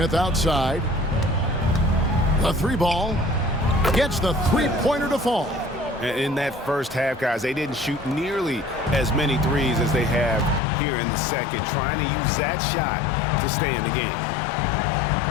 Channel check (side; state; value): right; drops out; at 10.6 s